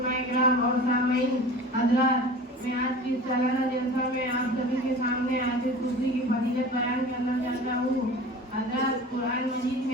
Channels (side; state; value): both; normal; correlation 0.38